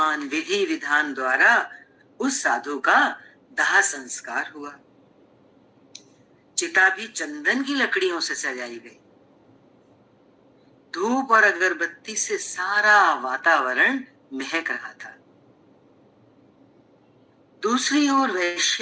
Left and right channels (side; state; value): both; identical; correlation 1.00